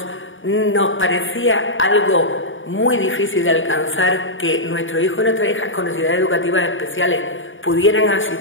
nos parecía algo muy difícil de alcanzar que nuestros hijos y nuestras hijas con necesidades educativas especiales pudieran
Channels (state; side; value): late; right; 0.57 ms